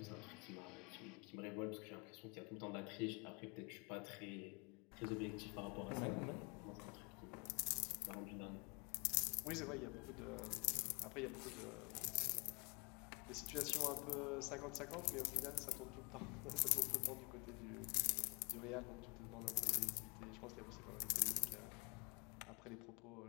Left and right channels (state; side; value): quieter; right; 31.4 dB